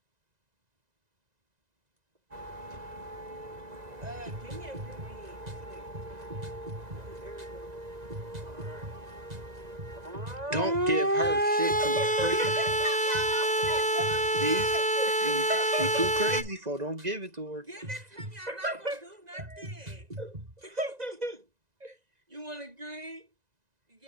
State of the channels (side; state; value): left; late; 2.0 ms